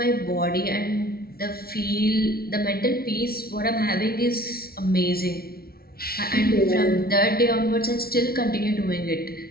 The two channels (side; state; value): right; late; 0.44 ms